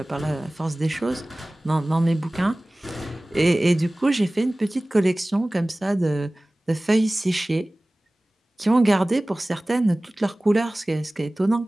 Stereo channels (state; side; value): normal; both; correlation 0.98